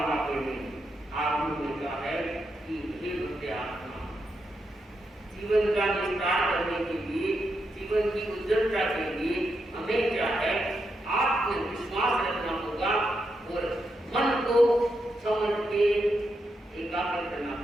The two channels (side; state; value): both; normal; correlation 0.84